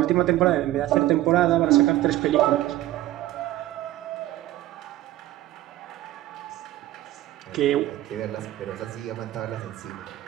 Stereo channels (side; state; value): left; quieter; 15.0 dB